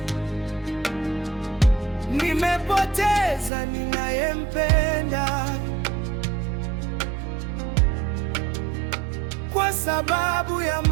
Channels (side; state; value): left; drops out; at 3.5 s